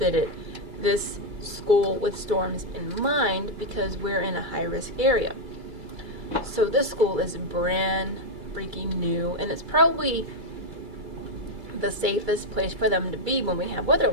this school with storms in mind because we're in a high-risk area. So this school is brand freaking new, and it's probably the safest place for them to be when we have weather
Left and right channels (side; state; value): left; late; 2.3 ms